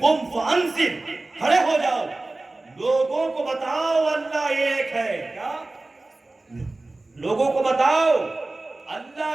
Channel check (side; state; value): left; quieter; 3.1 dB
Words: قم فانذر, کھڑے ہو جاؤ لوگوں کو بتاؤ اللہ ایک ہے. کیا لوگوں کو بتاؤ اللہ